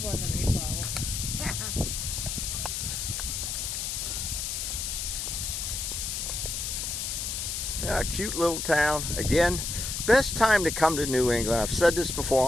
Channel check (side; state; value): left; noise; hiss, 3 dB below the sound